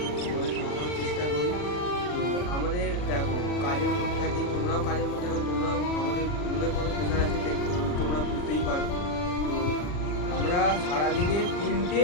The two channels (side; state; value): right; late; 40 ms